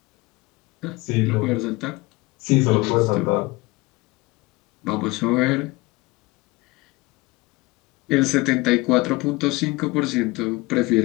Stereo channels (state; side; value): quieter; right; 22.6 dB